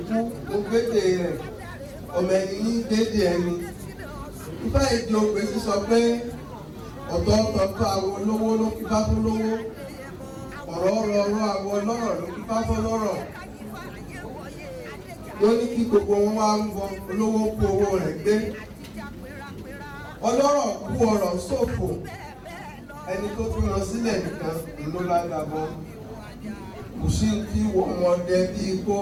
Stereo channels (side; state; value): both; identical; correlation 1.00